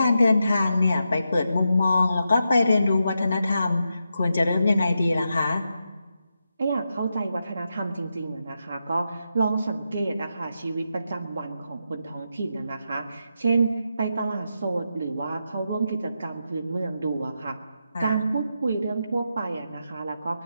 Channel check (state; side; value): inverted; both; correlation -0.86